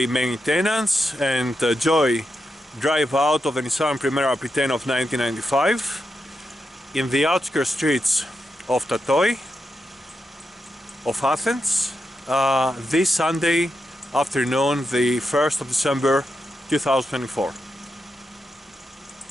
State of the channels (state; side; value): normal; both; correlation 0.86